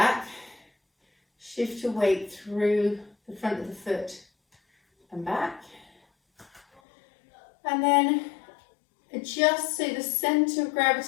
Shift your weight through the front of the foot and back. And then adjust so the centre of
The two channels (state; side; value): drops out; right; at 6.8 s